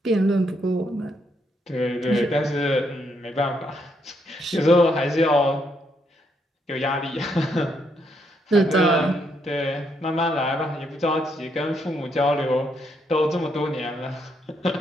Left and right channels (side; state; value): both; normal; correlation 0.75